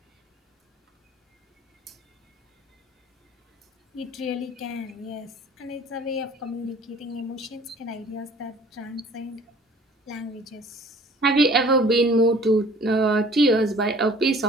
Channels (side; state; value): both; normal; correlation 0.51